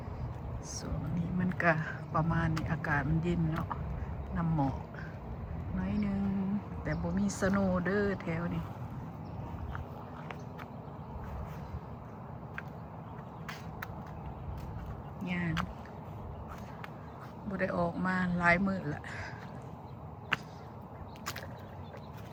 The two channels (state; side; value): identical; both; correlation 1.00